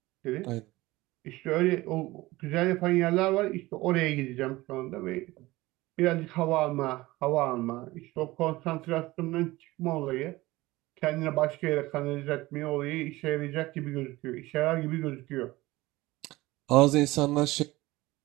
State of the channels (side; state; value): left; quieter; 19.4 dB